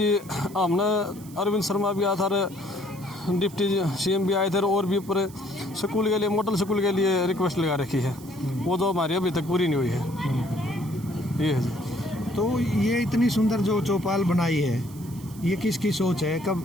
हमने अरविंद शर्मा भी आया था, डिप्टी CM भी आए थे, और भी ऊपर स्कूल के लिए, मॉडल स्कूल के लिए रिक्वेस्ट लगा रखी है, वो तो हमारी अभी तक पूरी नहीं हुई है। ये है जी। तो ये इतनी सुंदर जो चौपाल बनाई है, ये किसकी सोच है?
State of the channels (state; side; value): noise; right; hiss, 21 dB below the sound